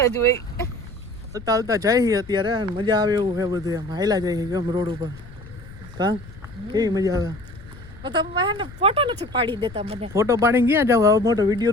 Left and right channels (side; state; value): left; noise; rumble, 18 dB below the sound